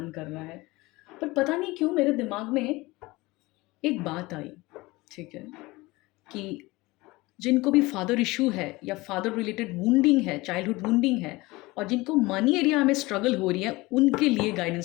कर रहा है, पर पता नहीं क्यों मेरे दिमाग में एक बात आई। ठीक है। कि जिनको भी फादर इशू है या फादर रिलेटेड वुंडिंग है, चाइल्डहुड वुंडिंग है, और जिनको मनी एरिया में स्ट्रगल हो रही है, उनके लिए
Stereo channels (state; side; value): quieter; right; 21.6 dB